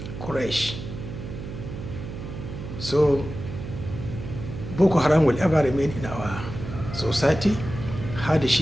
Quraysh. So Boko Haram will ever remain in our society,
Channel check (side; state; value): right; noise; hum, 9 dB below the sound